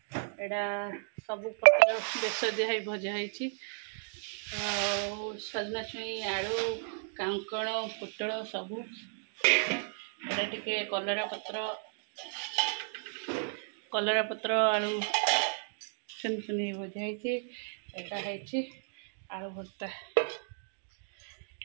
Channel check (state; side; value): silent; left; digital silence